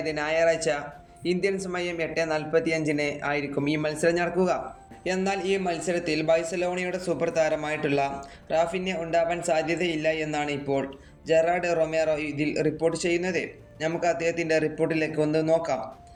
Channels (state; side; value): identical; both; correlation 1.00